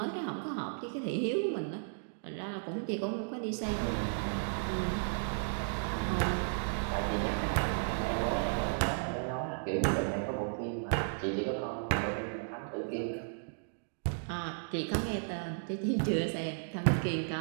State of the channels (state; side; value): silent; left; digital silence